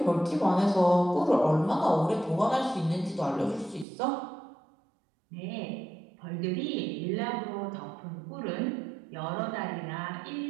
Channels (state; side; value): drops out; left; at 3.9 s